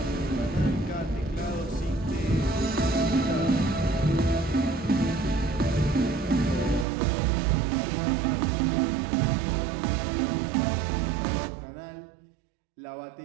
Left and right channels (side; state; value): left; drops out; at 6.9 s